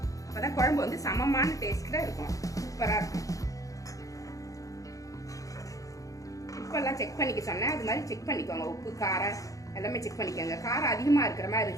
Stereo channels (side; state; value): right; late; 0.16 ms